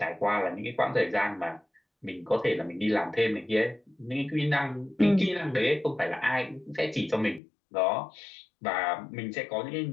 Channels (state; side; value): drops out; right; at 7.4 s